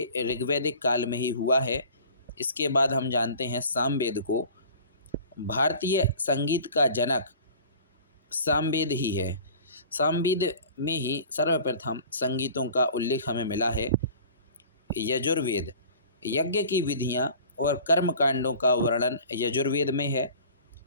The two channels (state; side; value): inverted; both; correlation -0.44